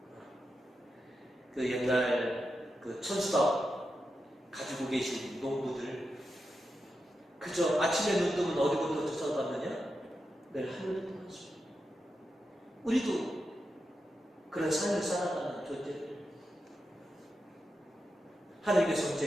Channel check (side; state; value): both; normal; correlation 0.88